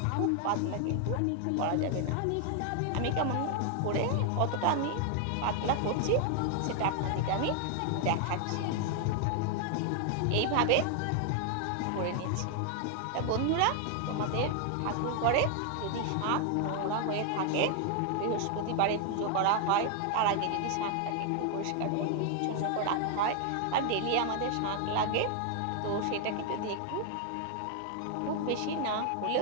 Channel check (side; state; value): both; different; correlation 0.00